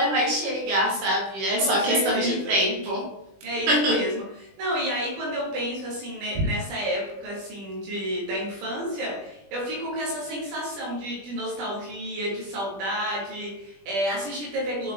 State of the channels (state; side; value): late; left; 20 ms